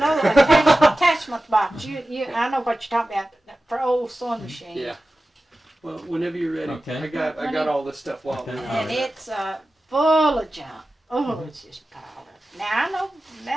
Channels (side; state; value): both; normal; correlation 0.95